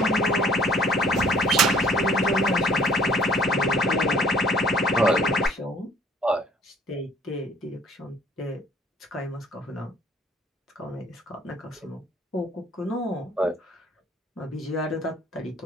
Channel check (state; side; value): normal; both; correlation 0.56